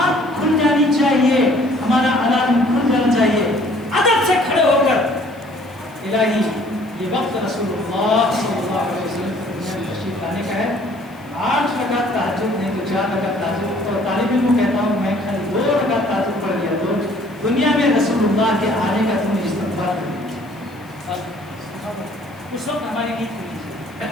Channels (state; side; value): noise; left; hiss, 29 dB below the sound